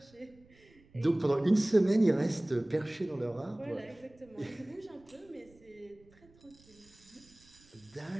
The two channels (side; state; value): right; noise; rumble, 28 dB below the sound